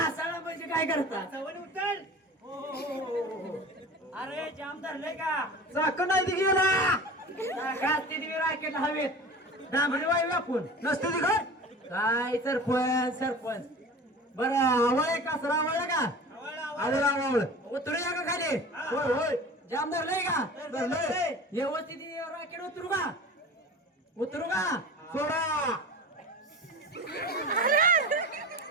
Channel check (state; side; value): normal; both; correlation 0.36